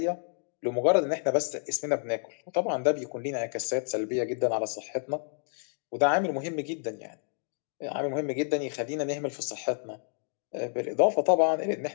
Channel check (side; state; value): right; silent; 58 dB below the other